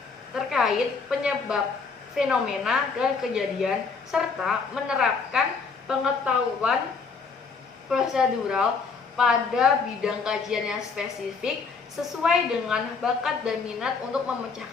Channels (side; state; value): right; quieter; 5.0 dB